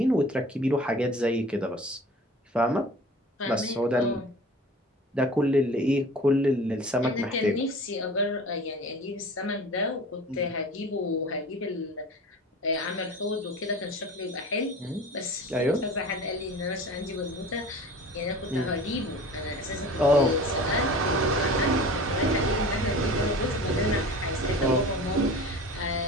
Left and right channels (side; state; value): both; normal; correlation 0.40